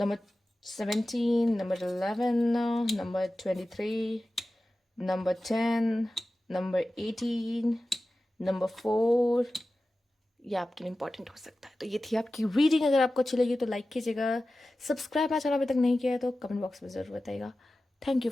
17, number 11, number 23, number 10, number 18, number 4। ये आपके लिए important हो सकता है। तो ये थी आपकी रीडिंग। अगर आपको अच्छी लगी तो लाइक कीजिएगा, सब्सक्राइब मेरा चैनल अभी तक नहीं किया है तो कमेंट बॉक्स में ज़रूर बताइएगा। Thank you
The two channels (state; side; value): normal; both; correlation 0.95